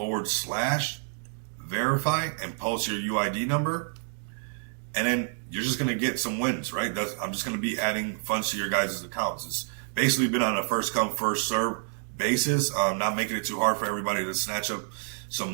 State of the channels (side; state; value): left; silent; 59 dB below the other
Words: /verify and post your UID number. And then you're just going to get some wins, right? I'm just going to be adding funds to your guys' accounts. It's basically been on a first come, first serve basis, not making it too hard for everybody to snatch up